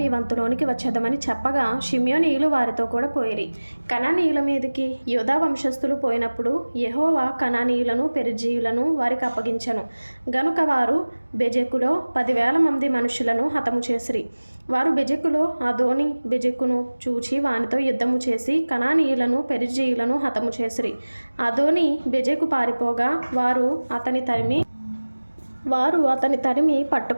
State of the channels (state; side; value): inverted; both; correlation -1.00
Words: మీ వంతులోనికి వచ్చేదమని చెప్పగా షిమ్యోనీయులు వారితో కూడా పోయిరి. కనానీయుల మీదకి యూదా వంశస్థులు పోయినప్పుడు యెహోవా కనానీయులను పెరిజీయులను వారికి అప్పగించెను గనుక వారు బెజెకులో 10,000 మంది మనుషులను హతము చేసిరి. వారు బెజెకులో అదోని బెజెకును చూచి వానితో యుద్ధము చేసి కనానీయులను పెరిజీయులను హతము చేసిరి. అదోని బెజెకు పారిపోగా వారు అతని తరిమి